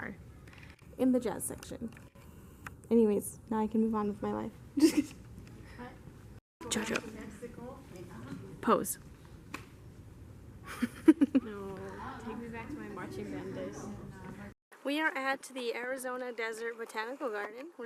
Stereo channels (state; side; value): identical; both; correlation 1.00